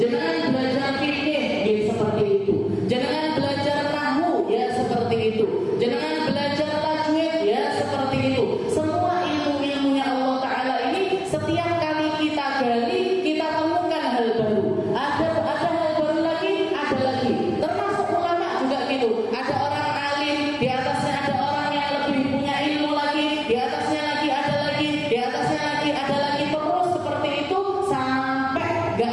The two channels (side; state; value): both; identical; correlation 1.00